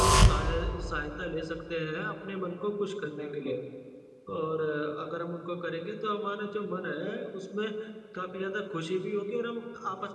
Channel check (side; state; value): both; identical; correlation 1.00